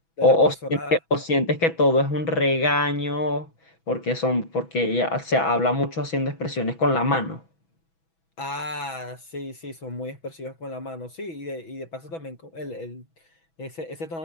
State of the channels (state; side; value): late; right; 6.1 ms